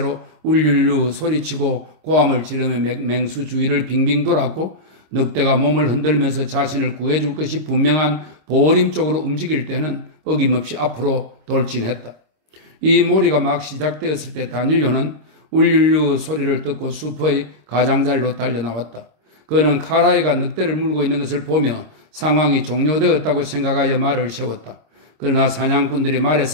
울률루 소리치고 고함을 지르며 맹수 주위를 빙빙 돌았고, 늑대가 몸을 흔들면서 자신을 구해줄 것이 분명한 보림 쪽으로 움직일 때는 어김없이 앞으로 돌진했다. 이 몰이가 막 시작되었을 때 다닐료는 울률루 소리를 듣고 숲의 가장자리로 달려나왔다. 그는 카라이가 늑대를 물고 있는 것을 보며 상황이 종료되었다고 생각하여 말을 세웠다. 그러나 사냥꾼들이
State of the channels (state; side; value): late; left; 26 ms